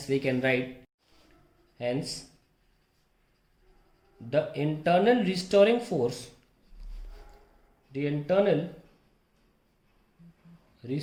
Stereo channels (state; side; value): identical; both; correlation 1.00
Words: we can write, hence the internal restoring force, the internal